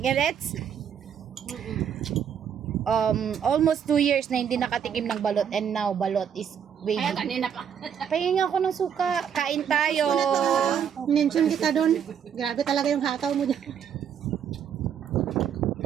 Emirates? Almost 2 years na hindi nakatikim ng balot and now balot is waiting. Ay, kanina pa. Pahingin ako ng suka. Kain tayo. Mention kita doon. Grabe talaga yung hataw mo dyan.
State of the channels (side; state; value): left; quieter; 8.2 dB